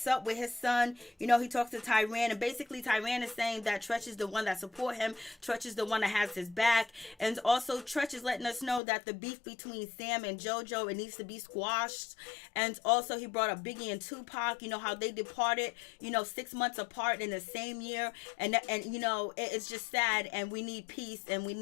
up with his son. He talks to Tyran. And basically Tyran is saying that Tretch is the one that support him. Tretch is the one that has his back. And also Tretch is letting us know that the beef between Sam and JoJo, it needs to be squashed. And also he brought up Biggie and Tupac. How they departed, 6 months apart in the same year. And it's just sad. And we need peace and we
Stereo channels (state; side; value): drops out; right; at 8.8 s